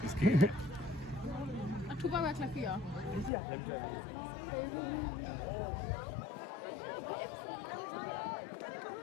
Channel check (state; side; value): drops out; right; at 3.3 s